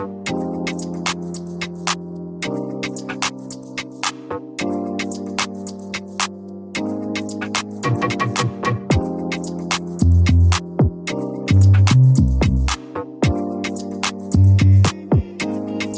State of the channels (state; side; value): identical; both; correlation 1.00